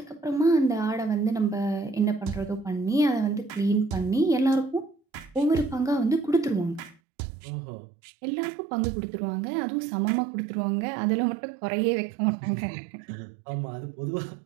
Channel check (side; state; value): left; drops out; at 7.0 s